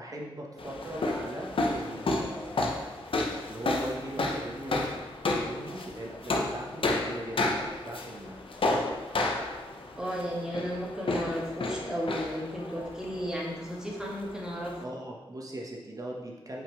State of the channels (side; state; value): both; normal; correlation 0.67